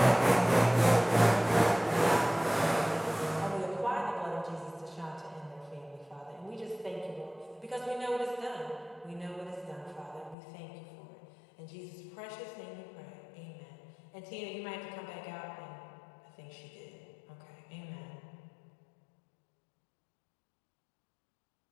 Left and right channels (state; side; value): drops out; right; at 10.4 s